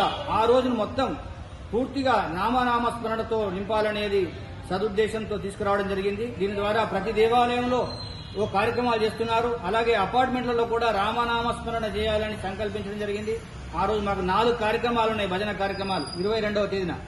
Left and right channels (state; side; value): identical; both; correlation 1.00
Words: ఆ రోజును మొత్తం పూర్తిగా నామనామ స్మరణతో నింపాలనేది సదుద్దేశంతో తీసుకురావడం జరిగింది. దీని ద్వారా ప్రతి దేవాలయంలో ఓ కార్యక్రమాలు చేస్తున్నారు. అలాగే అపార్ట్మెంట్లలో కూడా రామనామ స్మరణ చేయాలని సంకల్పించడం జరిగింది. ఆ రోజు మాకు 4 కార్యక్రమాలు ఉన్నాయి, భజన కార్యక్రమాలు. 22వ తేదీన